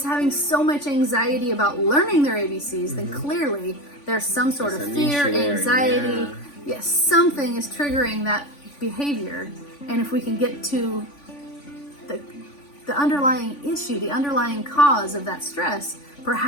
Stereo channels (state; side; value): late; right; 3.5 ms